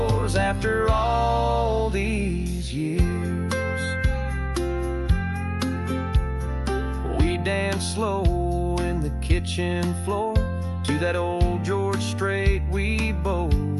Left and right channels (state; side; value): identical; both; correlation 1.00